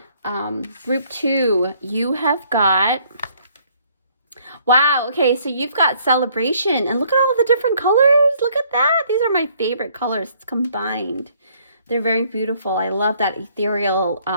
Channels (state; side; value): inverted; both; correlation -0.64